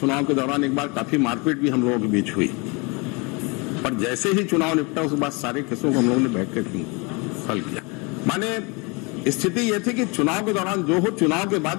के दौरान एक बार काफी मारपीट भी हम लोगों के बीच हुई, पर जैसे ही चुनाव निपटा उसके बाद सारे केसों को हम लोगों ने बैठ कर हल किया। माने स्थिति यह थी कि चुनाव के दौरान जो हो, चुनाव के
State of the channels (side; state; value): right; quieter; 29.7 dB